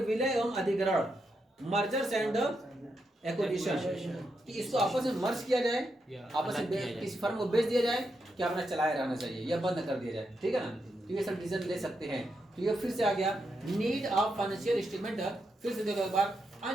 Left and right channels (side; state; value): both; normal; correlation 0.83